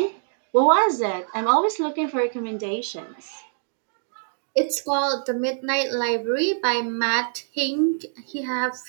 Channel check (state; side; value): silent; left; digital silence